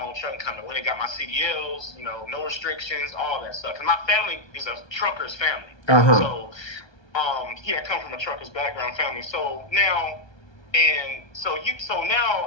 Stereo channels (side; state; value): right; late; 1.3 ms